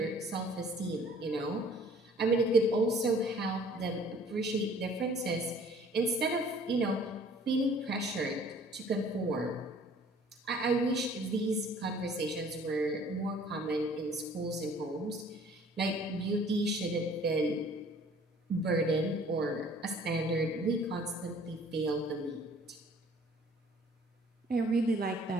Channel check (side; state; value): both; normal; correlation 0.54